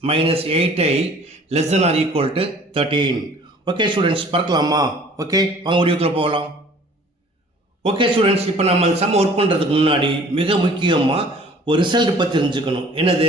minus 8i less than or equal to 13. Okay students, பார்க்கலாமா? Okay, வாங்க வீடியோக்குள்ள போகலாம். Okay students, இப்போ நம்ம some work பண்ணுறதுக்கு முன்னாடி மிக முக்கியமாக ஒரு ரிசல்ட் பற்றி தெரிஞ்சுக்கணும். என்னது?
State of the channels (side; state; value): both; normal; correlation 0.51